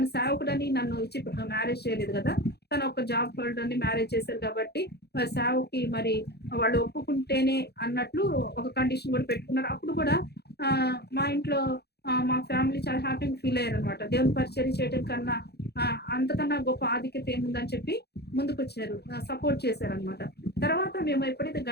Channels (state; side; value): late; right; 0.48 ms